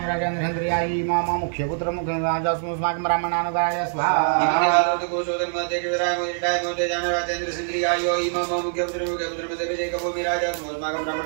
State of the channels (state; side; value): silent; left; 62 dB below the other